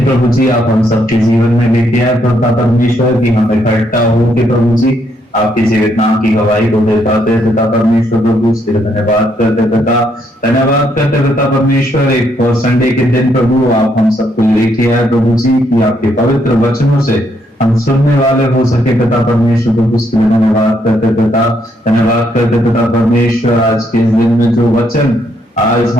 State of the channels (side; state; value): both; normal; correlation 0.74